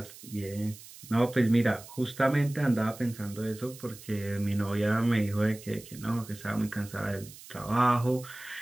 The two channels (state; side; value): noise; right; hiss, 17 dB below the sound